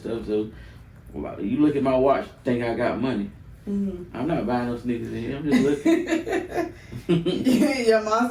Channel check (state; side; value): identical; both; correlation 1.00